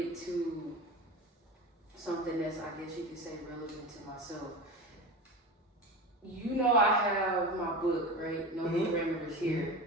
to something that's, I guess you could say, relevant to myself. You know, I have my book, right? No Parameters here.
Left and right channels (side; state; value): both; normal; correlation 0.28